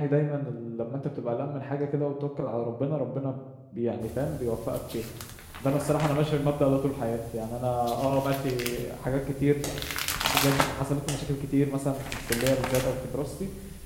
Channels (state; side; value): identical; both; correlation 1.00